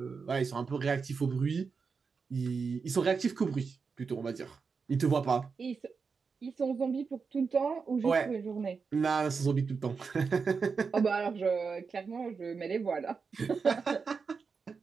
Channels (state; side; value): quieter; left; 5.2 dB